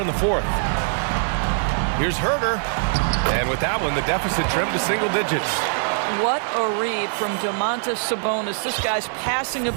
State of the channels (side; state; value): left; silent; digital silence